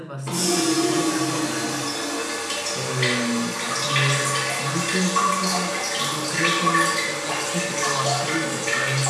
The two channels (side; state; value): both; identical; correlation 1.00